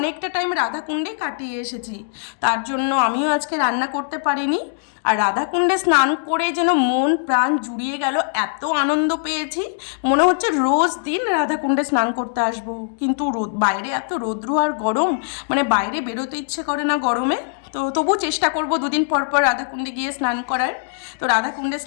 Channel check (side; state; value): right; silent; digital silence